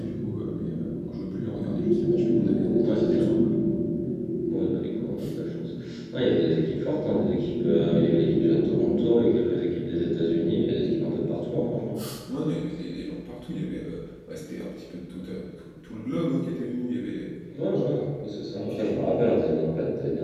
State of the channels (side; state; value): both; identical; correlation 1.00